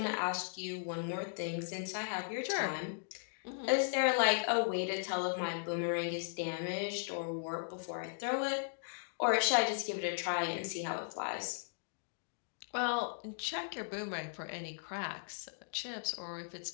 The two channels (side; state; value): right; silent; digital silence